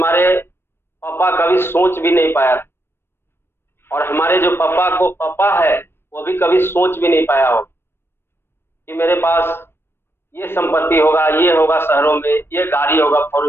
पापा कभी सोच भी नहीं पाया। और हमारे जो पापा को पापा है वो भी कभी सोच भी नहीं पाया हो कि मेरे पास ये संपत्ति होगा, ये होगा शहरों में, ये गाड़ी होगा फोर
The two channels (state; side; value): late; right; 0.11 ms